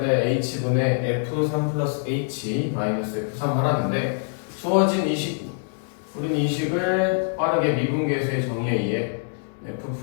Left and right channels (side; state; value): right; silent; digital silence